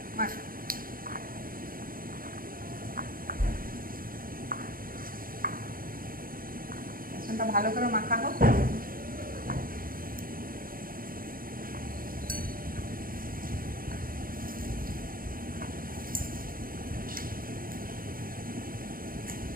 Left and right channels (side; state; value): left; late; 0.41 ms